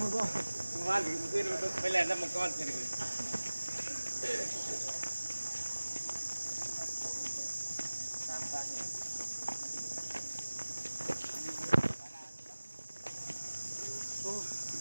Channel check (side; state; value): both; inverted; correlation -1.00